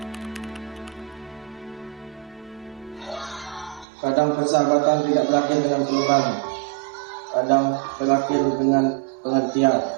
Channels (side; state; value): left; drops out; at 3.9 s